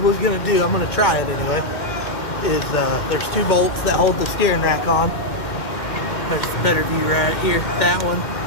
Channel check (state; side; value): late; right; 2.1 ms